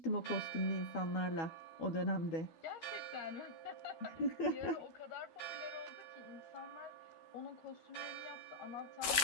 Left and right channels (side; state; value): right; late; 13 ms